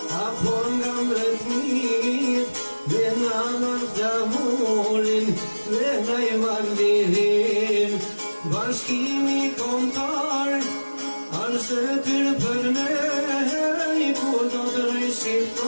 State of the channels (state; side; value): inverted; both; correlation -1.00